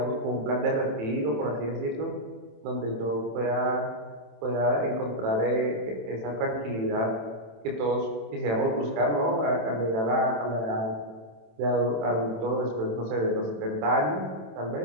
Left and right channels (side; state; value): left; late; 27 ms